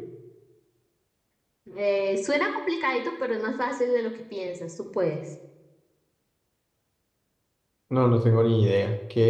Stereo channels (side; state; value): both; identical; correlation 1.00